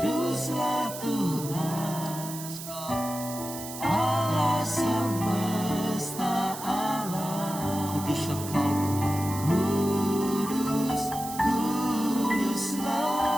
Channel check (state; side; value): noise; right; hiss, 10 dB below the sound